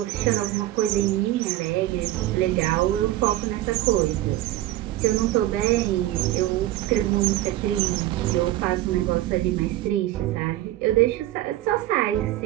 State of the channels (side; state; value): left; quieter; 15.2 dB